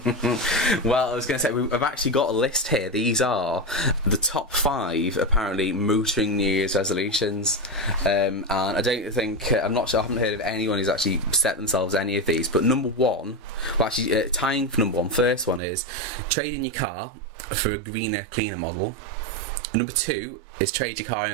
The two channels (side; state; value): left; drops out; at 15.6 s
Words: Well, I was going to say, I've actually got a list here. These are the top 5, apparently, motoring New Year's resolutions. And I don't think, I'm not sure, I haven't heard of anyone who's actually set themselves any of these. But number 1, well, actually, tying for number 1, first one is trade in your car for a greener, cleaner model. Number 2 is trade your car